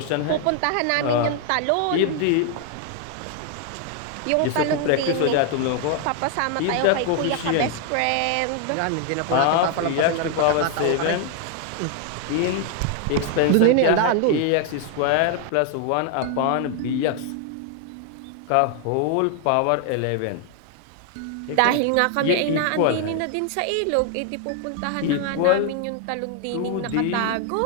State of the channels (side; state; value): both; different; correlation 0.00